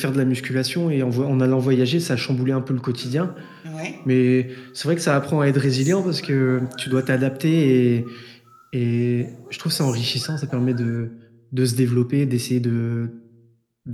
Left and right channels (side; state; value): both; identical; correlation 1.00